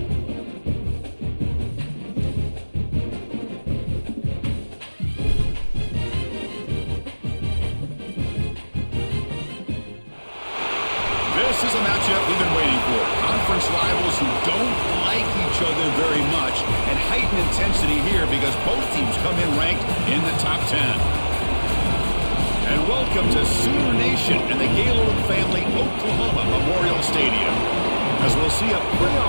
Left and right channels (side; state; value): both; inverted; correlation -1.00